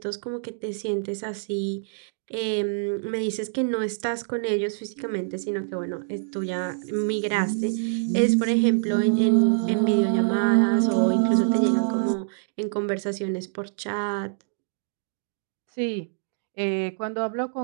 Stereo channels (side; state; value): left; silent; digital silence